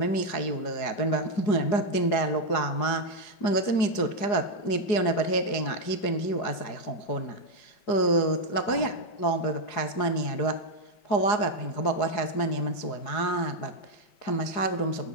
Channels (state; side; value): late; right; 4.8 ms